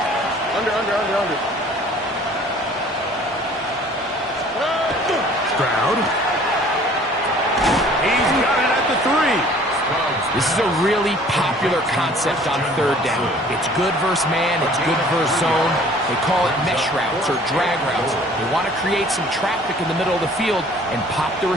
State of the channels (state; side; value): normal; both; correlation 0.52